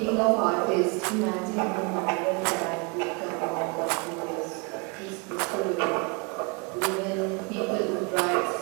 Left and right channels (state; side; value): quieter; left; 31.9 dB